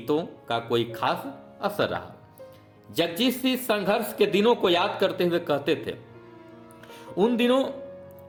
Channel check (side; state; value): both; identical; correlation 1.00